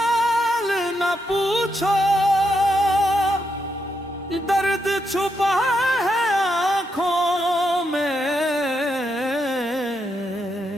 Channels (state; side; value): normal; both; correlation 0.81